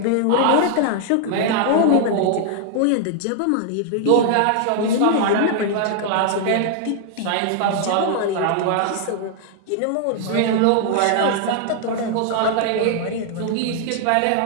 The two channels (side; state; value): both; different; correlation -0.01